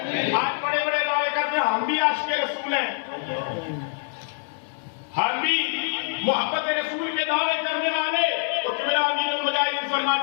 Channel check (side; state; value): right; silent; 62 dB below the other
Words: آج بڑے بڑے دعوے کرتے ہیں ہم بھی عاشق رسول ہیں، ہم بھی محبت رسول کے دعوے کرنے والے، تو قبلہ امیر المجاہدین